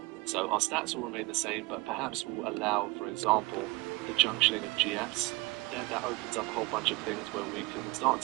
So our stats will remain the same, but perhaps we'll allow, for example, the junctioning of GFs. Then that opens up a whole bunch of things where we can start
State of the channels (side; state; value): left; quieter; 24.2 dB